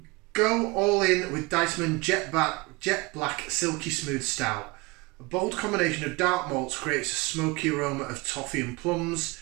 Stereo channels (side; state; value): left; quieter; 24.7 dB